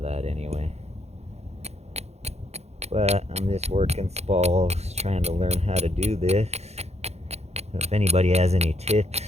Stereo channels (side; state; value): left; late; 0.31 ms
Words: that anyway. But I'm just working spalls, trying to learn how to do this. So if anybody has any tips,